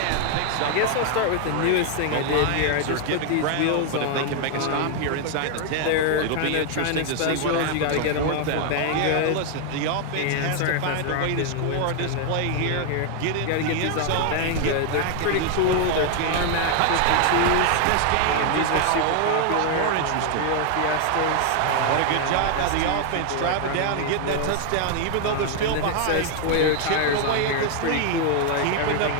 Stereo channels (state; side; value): different; both; correlation 0.00